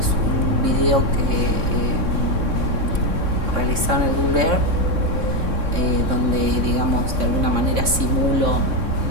un video que realizaron en el Google Earth, donde, digamos, de alguna manera simulo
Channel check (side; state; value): left; late; 3.6 ms